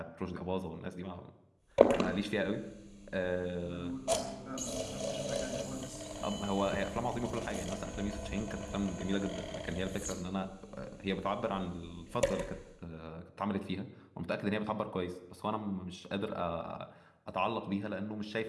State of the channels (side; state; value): both; identical; correlation 1.00